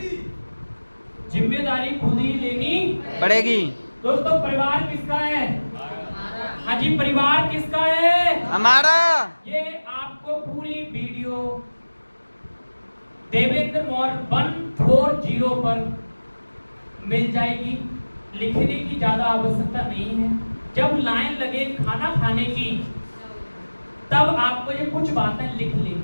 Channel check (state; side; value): inverted; both; correlation -1.00